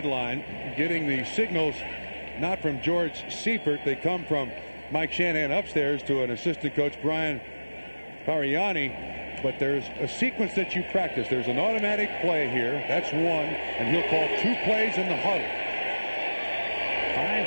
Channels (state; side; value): inverted; both; correlation -1.00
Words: getting the signals not from George Seifert. They come from Mike Shanahan upstairs to an assistant coach, Brian Pariani. But there's a sequence that you practice. There's an automatic play here. That's one. And he'll call 2 plays in the huddle.